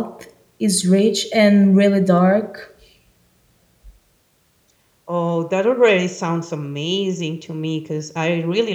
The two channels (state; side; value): identical; both; correlation 1.00